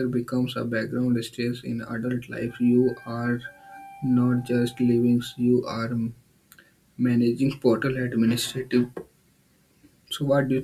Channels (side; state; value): both; identical; correlation 1.00